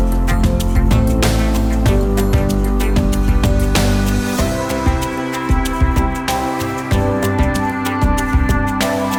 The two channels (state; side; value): identical; both; correlation 1.00